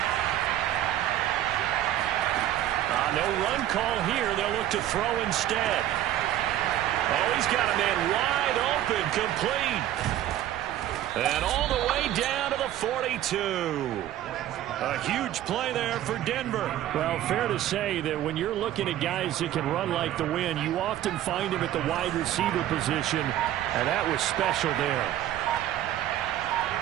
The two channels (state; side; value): quieter; left; 12.6 dB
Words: No run call here. They'll look to throw instead. Oh, he's got a man wide open, complete. And all the way down to the 42. A huge play there for Denver. Well, fair to say that when you're looking at guys that can run like the wind, you often find him at the wide receiver position, and that was special there.